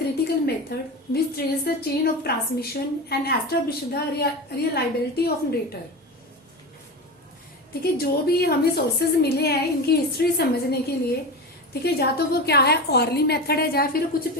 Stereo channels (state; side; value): normal; both; correlation 0.24